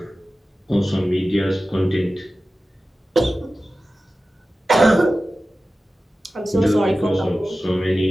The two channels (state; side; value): normal; both; correlation 0.95